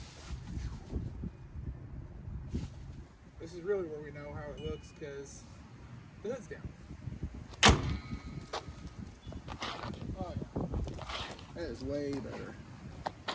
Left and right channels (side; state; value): both; identical; correlation 1.00